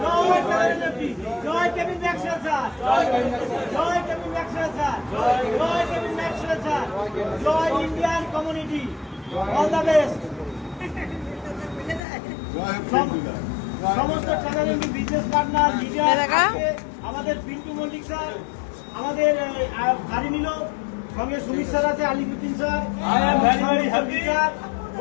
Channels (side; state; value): right; drops out; at 12.0 s